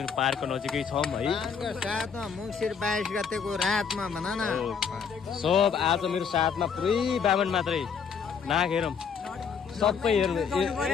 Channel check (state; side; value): quieter; right; 6.5 dB